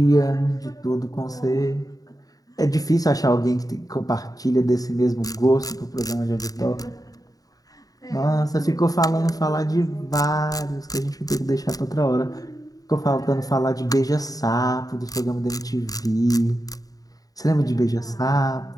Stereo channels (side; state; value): right; late; 0.18 ms